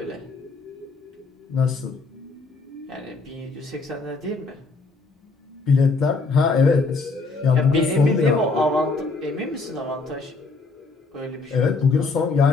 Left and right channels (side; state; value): right; quieter; 3.8 dB